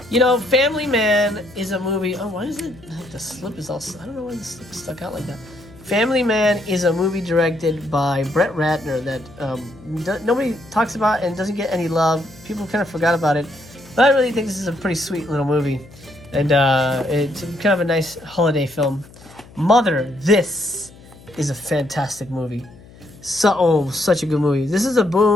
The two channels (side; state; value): left; noise; hum, 22 dB below the sound